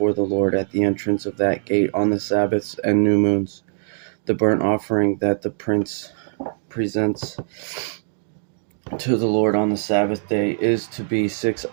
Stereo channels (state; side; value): silent; left; digital silence